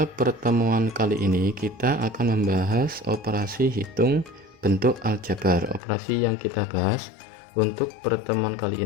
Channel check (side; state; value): right; drops out; at 5.8 s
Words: pertemuan kali ini kita akan membahas operasi hitung bentuk aljabar. Operasi yang kita bahas untuk pertemuan kali